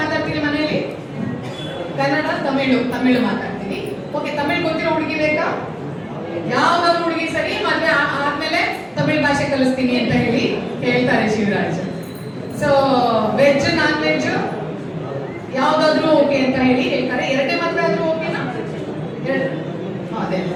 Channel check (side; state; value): both; identical; correlation 1.00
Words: ಮಾತಾಡ್ತೀರಿ ಮನೆಯಲ್ಲಿ? ಕನ್ನಡ, ತಮಿಳು ಮಾತಾಡ್ತೀನಿ. ಓಕೆ, ತಮಿಳ್ ಗೊತ್ತಿರೋ ಹುಡುಗಿ ಬೇಕಾ? ಯಾವ್ದಾದ್ರು ಹುಡುಗಿ ಸರಿ, ಮದ್ವೆ ಆದ್ಮೇಲೆ ತಮಿಳ್ ಭಾಷೆ ಕಲಿಸ್ತೀನಿ ಅಂತ ಹೇಳಿ ಹೇಳ್ತಾರೆ Shivraj. So veg non veg ಯಾವ್ದಾದ್ರು ಓಕೆ ಅಂತ ಹೇಳಿ ಹೇಳ್ತಾರೆ. ಎರಡನೇ ಮದ್ವೆ ಆದ್ರೂ ಓಕೆನಾ? ಅದೇ.